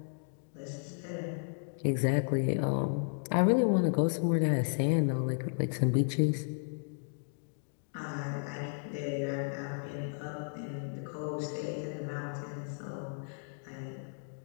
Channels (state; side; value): silent; right; digital silence